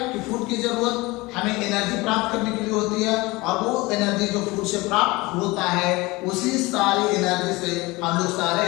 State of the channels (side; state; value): right; quieter; 22.4 dB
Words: कि फूड की जरूरत हमें एनर्जी प्राप्त करने के लिए होती है और वो एनर्जी जो फूड से प्राप्त होता है, उसी सारी एनर्जी से हम लोग